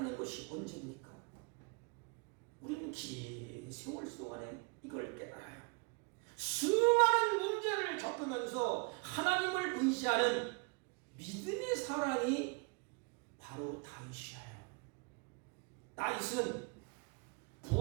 것이 언제입니까? 우리는 긴 세월 동안에 이걸 깨달아요. 수많은 문제를 겪으면서 하나님을 의지하는 믿음의 사람이 바로 다윗이에요. 다윗은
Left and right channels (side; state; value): left; quieter; 32.3 dB